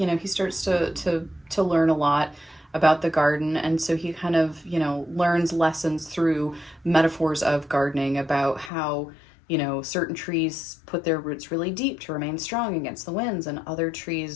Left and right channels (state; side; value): drops out; right; at 8.7 s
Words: starts to learn a lot about the garden, and so he kind of learns lessons through metaphors of gardening, about how certain trees put their roots really deep to remain strong against the winds, and other